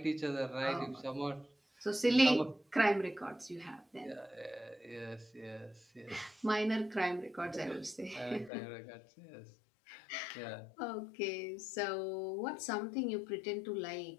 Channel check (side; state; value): right; drops out; at 8.5 s